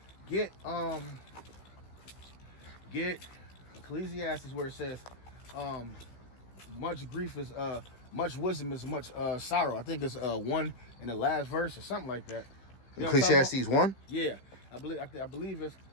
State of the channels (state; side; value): late; right; 15 ms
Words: get Ecclesiastes where it says, much grief is much wisdom is much sorrow. I think it's 1 in the last verse or something like that. You know Ecclesiastes 1? Yeah, I believe it's